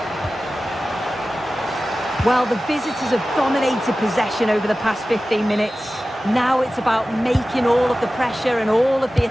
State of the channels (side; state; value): both; normal; correlation 0.95